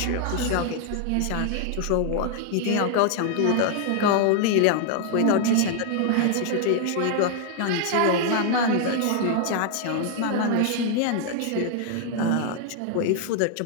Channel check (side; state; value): both; different; correlation 0.00